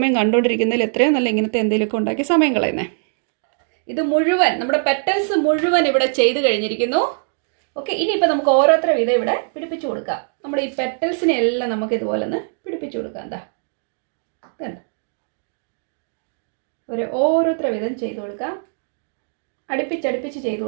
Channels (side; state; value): left; silent; 65 dB below the other